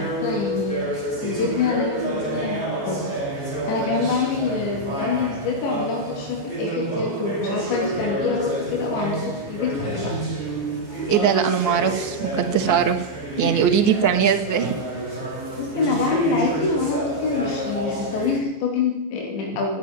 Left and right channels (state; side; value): late; right; 14 ms